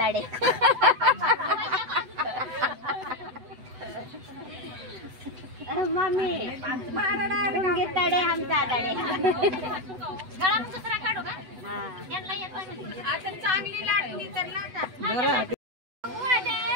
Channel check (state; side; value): late; left; 8.0 ms